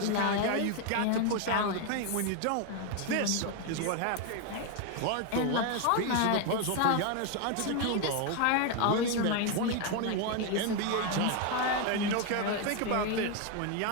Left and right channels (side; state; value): both; different; correlation 0.01